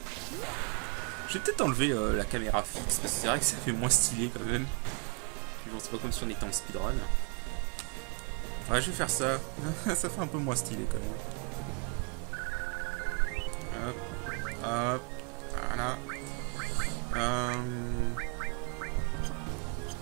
Je vais peut-être enlever la caméra fixe, parce que c'est vrai que ça fait moins stylé quand même. Bon, c'est pas comme si on était en speedrun. Ouais, je vais faire ça. Ça fait un peu moins stylé quand même. Hop, hop, voilà.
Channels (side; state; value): left; quieter; 34.8 dB